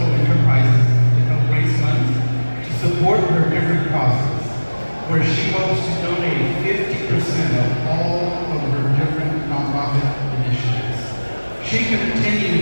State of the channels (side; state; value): both; inverted; correlation -1.00